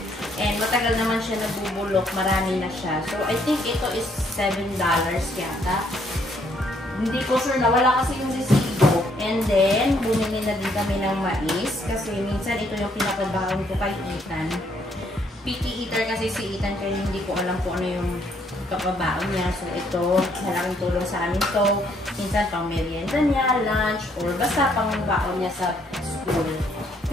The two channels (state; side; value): normal; both; correlation 0.69